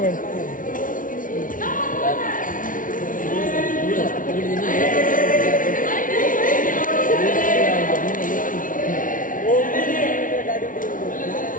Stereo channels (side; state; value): right; late; 0.38 ms